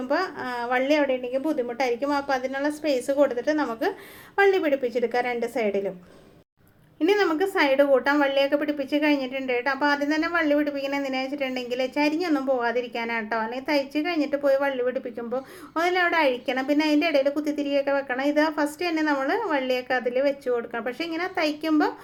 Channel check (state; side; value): identical; both; correlation 1.00